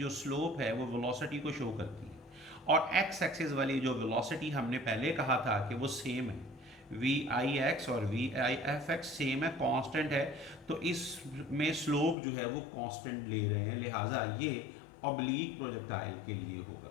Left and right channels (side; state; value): right; drops out; at 12.2 s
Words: स्लोप है वो वेलोसिटी को शो करती है। और एक्स एक्सिस वाली जो वेलोसिटी हमने पहले कहा था कि वो सेम है, वी आई एक्स और V I F X same है, कांस्टेंट है, तो इसमें स्लोप जो है वो कांस्टेंट ले रहे हैं, लिहाजा ये ऑब्लीक प्रोजेक्टाइल के लिए